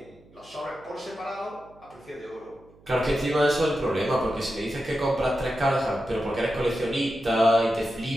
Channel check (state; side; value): noise; right; hum, 27 dB below the sound